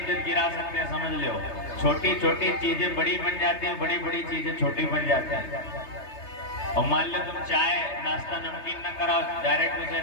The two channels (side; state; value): right; late; 3.3 ms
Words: गिरा सकते हैं, समझ लो। छोटी छोटी चीजें बड़ी बन जाती हैं, बड़ी बड़ी चीजें छोटी बन जाती हैं। और मान लो तुम चाय नाश्ता नमकीन न कराओ, डायरेक्ट उसे